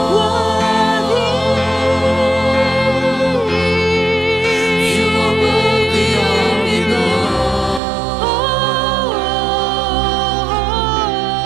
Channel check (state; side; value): drops out; left; at 7.8 s